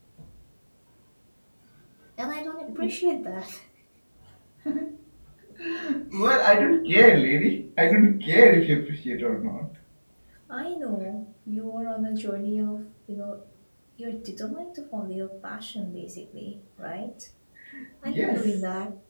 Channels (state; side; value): inverted; both; correlation -1.00